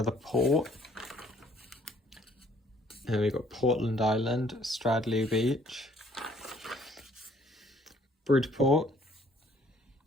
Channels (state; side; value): normal; both; correlation 0.61